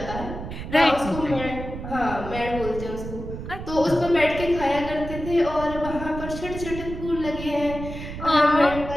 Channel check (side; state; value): right; noise; rumble, 9 dB below the sound